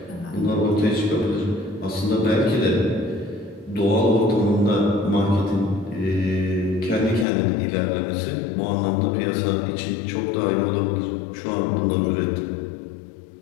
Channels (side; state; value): right; drops out; at 7.2 s